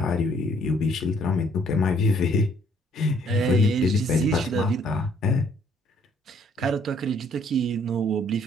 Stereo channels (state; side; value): normal; both; correlation 0.63